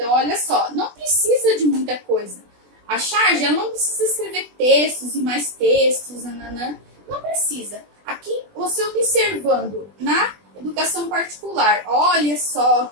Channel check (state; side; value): late; left; 20 ms